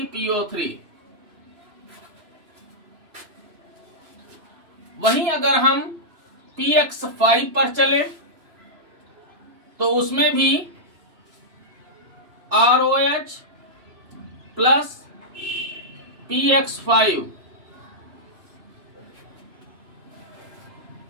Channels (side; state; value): left; late; 3.0 ms